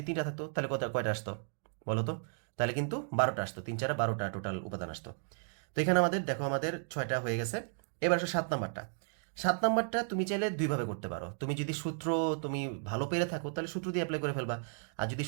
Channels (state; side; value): silent; left; 55 dB below the other